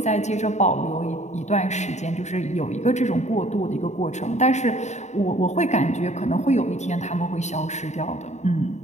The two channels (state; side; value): late; right; 0.33 ms